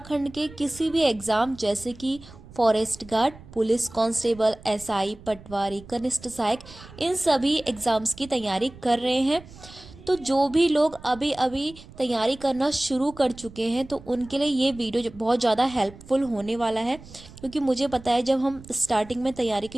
के किसी भी एग्ज़ाम जैसे कि forest guard, police constable, SI, patwari, कनिष्ठ सहायक, इन सभी एग्ज़ाम्स की तैयारी कर रहे हैं। तो जो भी लोग अभी अभी तैयारी करना शुरू कर चुके हैं तो उनके लिए ये वीडियो बहुत ज़्यादा हेल्पफुल होने वाला है, क्योंकि मुझे पता है जब हम स्टार्टिंग में तैयारी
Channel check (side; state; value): right; noise; rumble, 19 dB below the sound